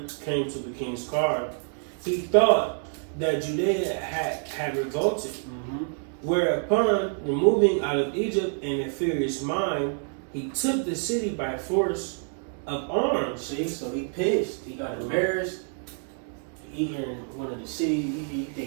came to the king's car, he thought that Judea had revolted, whereupon removing out of Egypt in a furious mind, he took the city by force of arms. See, so he pissed. He got embarrassed. He here in one of the cities. He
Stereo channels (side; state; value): left; silent; 58 dB below the other